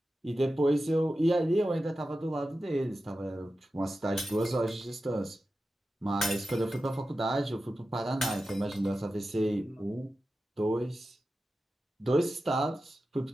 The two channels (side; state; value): both; normal; correlation 0.92